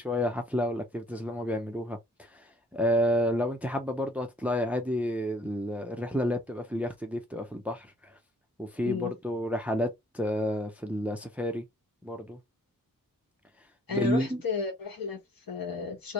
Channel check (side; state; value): both; normal; correlation 0.60